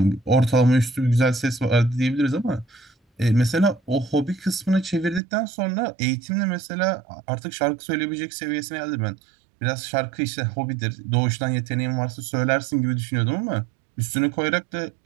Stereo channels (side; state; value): left; drops out; at 5.2 s